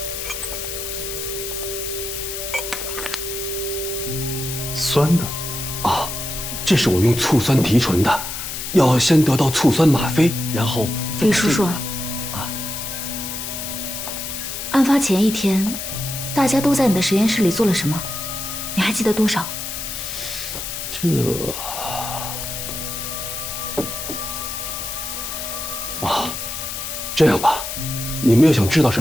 酸的，啊，这是我用醋酸提纯的，要先得到醋酸吗啡，然后李叔叔，案发前1天，大家都在你的实验室里做了什么？你还记得多少？这样吧，你们要想知道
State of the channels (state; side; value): noise; left; hiss, 6 dB below the sound